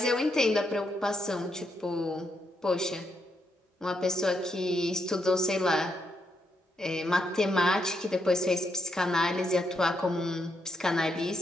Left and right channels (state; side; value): normal; both; correlation 0.79